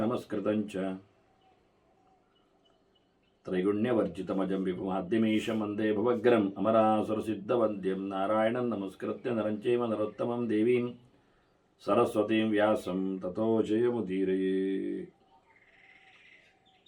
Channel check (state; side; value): identical; both; correlation 1.00